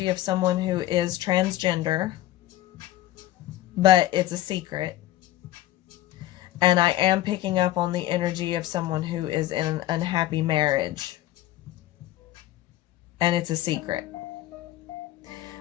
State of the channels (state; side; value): quieter; right; 14.5 dB